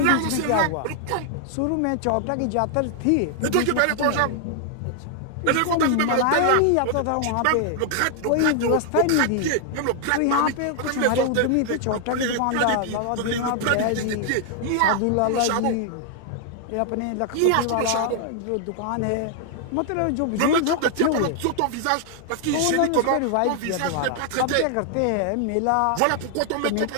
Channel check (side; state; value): both; different; correlation 0.00